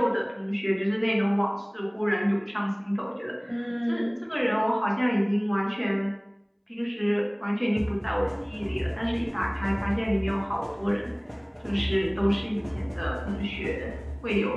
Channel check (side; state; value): both; identical; correlation 1.00